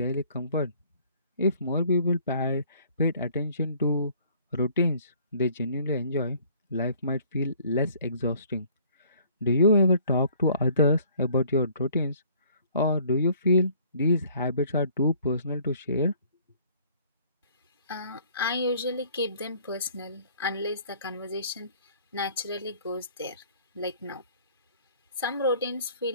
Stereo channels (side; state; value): both; inverted; correlation -0.57